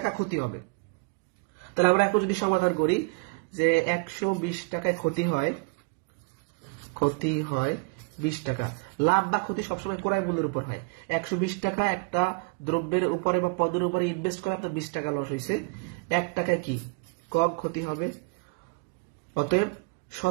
ক্ষতি হবে। তাহলে আমরা এখন যদি সমাধান করি যে 120 টাকায় ক্ষতি হয় 20 টাকা, লাভ বা ক্ষতি সবসময় ক্রয় মূল্যের উপর হয়। 120 টাকা একটা দ্রব্যের উপরে বা পণ্যের উপরে ইনভেস্ট করে আপনার 20 টাকা লস হয়েছে, 1 টাকায় কি কম ক্ষতি হবে। অতএব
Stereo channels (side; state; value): left; quieter; 32.0 dB